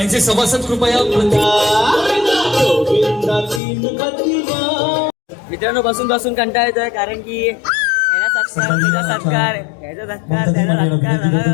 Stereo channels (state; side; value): drops out; right; at 3.6 s